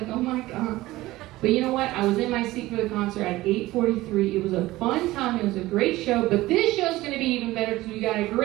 oh my God. But you know what? I was in my seat for the concert at 8:43. It was a fun time. It was a great show. But this show's going to be even better because we got a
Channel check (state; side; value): quieter; left; 17.8 dB